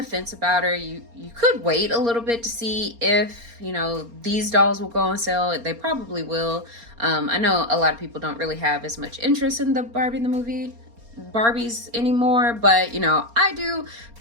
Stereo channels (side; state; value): left; late; 4.3 ms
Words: fence about her, you could wait a little bit to see if, these dolls will go on sale. They probably will. I know a lot of people don't really have as much interest in the Barbie the movie Barbies anymore, but, I do